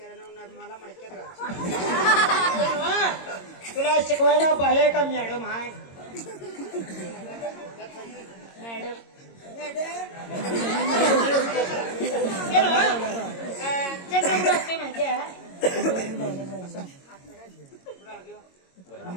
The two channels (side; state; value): right; late; 22 ms